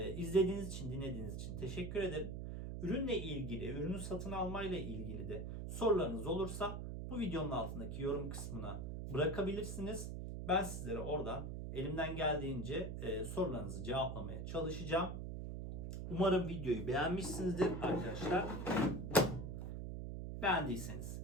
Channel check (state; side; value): noise; right; hum, 5 dB below the sound